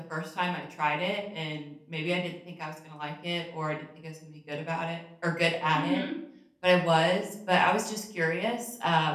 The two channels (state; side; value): identical; both; correlation 1.00